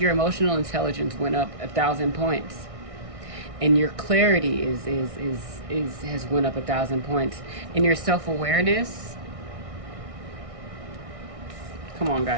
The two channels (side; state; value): left; late; 1.6 ms